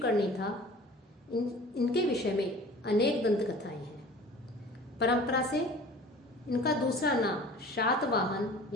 था। इनके विषय में अनेक दंत कथाएं हैं। परंपरा से इनका दूसरा नाम शातवाहन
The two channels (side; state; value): both; normal; correlation 0.44